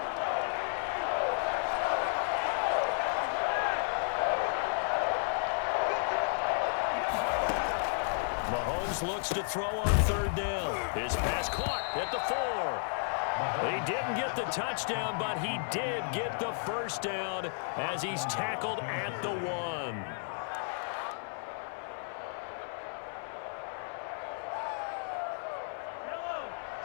Looks to throw on third down. His pass caught at the 4. He didn't get the touchdown, but he did get the first down as he's tackled at the 1.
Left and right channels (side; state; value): right; silent; 56 dB below the other